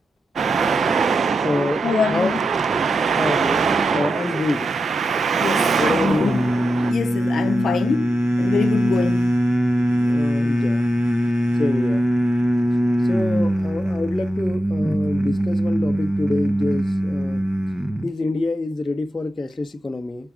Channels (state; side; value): normal; both; correlation 0.89